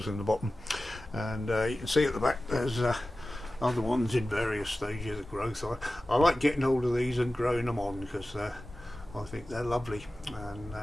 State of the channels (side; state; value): both; normal; correlation 0.95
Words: in the bottom, and you can see at the back there's other ones in various stages of growth. I like getting hold of these and growing them on because I think they're lovely, and